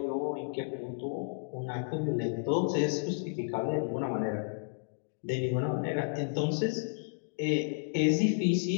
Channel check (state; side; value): silent; right; digital silence